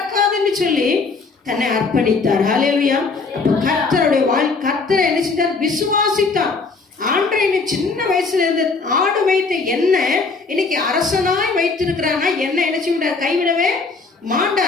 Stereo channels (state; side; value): quieter; right; 4.2 dB